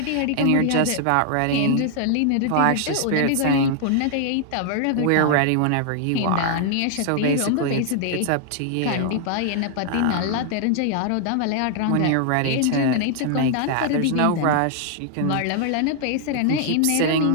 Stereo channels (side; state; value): both; different; correlation 0.00